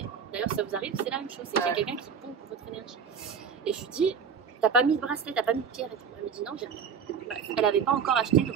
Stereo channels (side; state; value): left; quieter; 6.7 dB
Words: D'ailleurs, si ça vous arrive, c'est la même chose. C'est qu'il y a quelqu'un qui pompe votre énergie. Et je lui dis, t'as pas mis de bracelet, t'as pas mis de pierre et tout. Elle me dit, non, j'ai rien. Elle n'avait pas encore acheté le